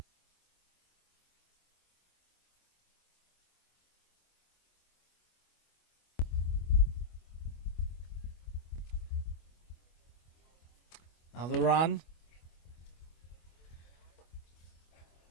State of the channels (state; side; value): late; right; 25 ms